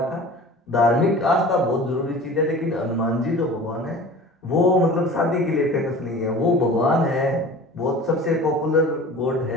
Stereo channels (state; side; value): normal; both; correlation 0.40